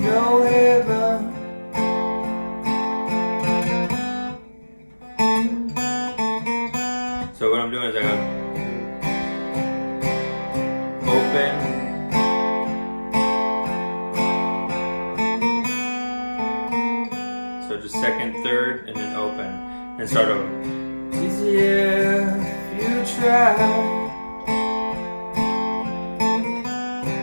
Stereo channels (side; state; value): both; inverted; correlation -1.00